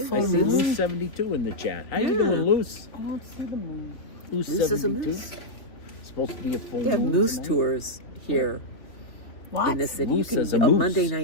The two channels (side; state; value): right; late; 3.4 ms